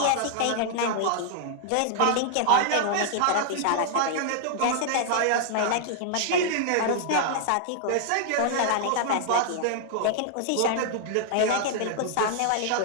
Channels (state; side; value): different; both; correlation -0.01